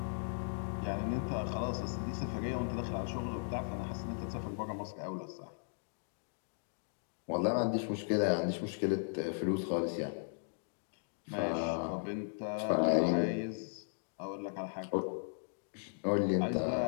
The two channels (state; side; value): silent; right; digital silence